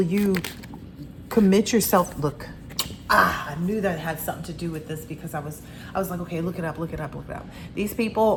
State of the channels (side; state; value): both; identical; correlation 1.00